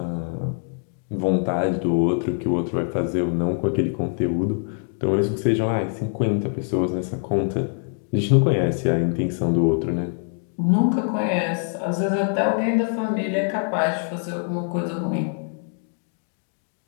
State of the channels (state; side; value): silent; right; 57 dB below the other